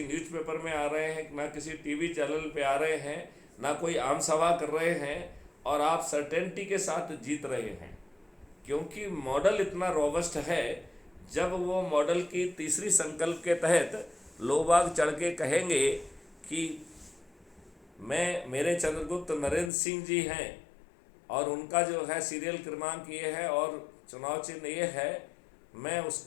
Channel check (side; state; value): right; drops out; at 19.7 s